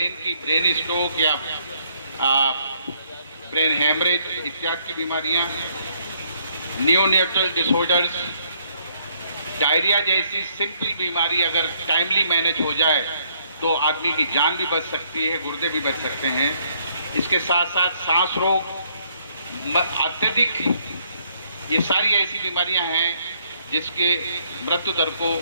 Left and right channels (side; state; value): both; inverted; correlation -0.68